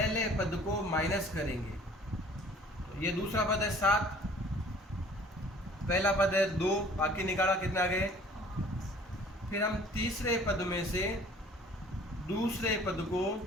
पद को माइनस करेंगे। तो ये दूसरा पद है 7, पहला पद है 2, बाकी निकाला कितना आ गए। फिर हम तीसरे पद में से दूसरे पद को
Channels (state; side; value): normal; both; correlation 0.52